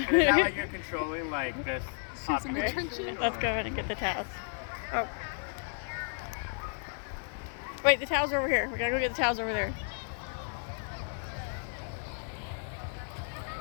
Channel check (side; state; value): right; silent; 56 dB below the other